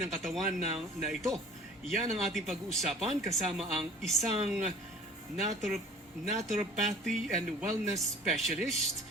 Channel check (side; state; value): both; normal; correlation 0.47